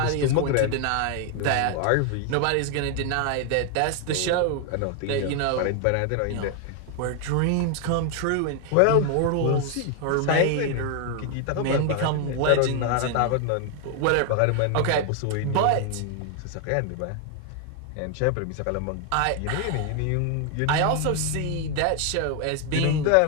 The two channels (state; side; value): different; both; correlation 0.00